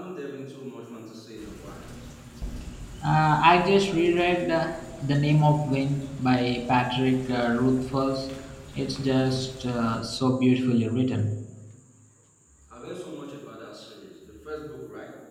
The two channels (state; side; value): identical; both; correlation 1.00